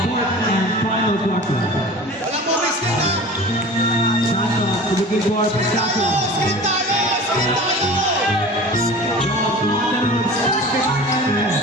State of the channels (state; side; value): normal; both; correlation 0.38